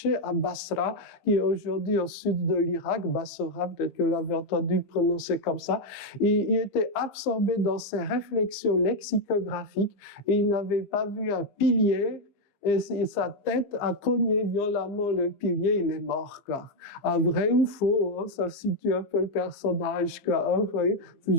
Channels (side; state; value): right; late; 15 ms